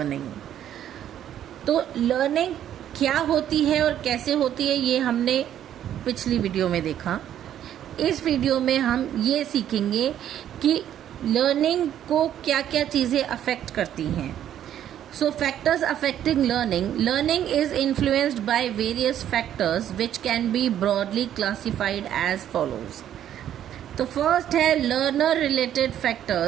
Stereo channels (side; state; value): left; quieter; 10.8 dB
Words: तो learning क्या होती है और कैसे होती है ये हमने पिछली वीडियो में देखा। इस वीडियो में हम ये सीखेंगे कि लर्निंग को क्या क्या चीज़ें अफेक्ट करती हैं। So factors affecting learning is influenced by various factors which can be broadly classified as follows. तो फर्स्ट है लर्नर रिलेटेड